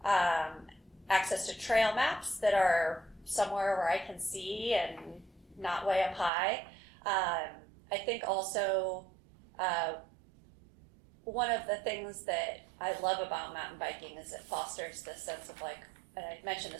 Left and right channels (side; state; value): left; drops out; at 6.3 s